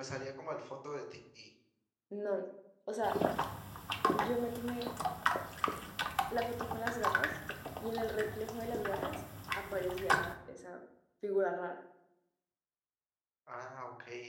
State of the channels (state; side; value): identical; both; correlation 1.00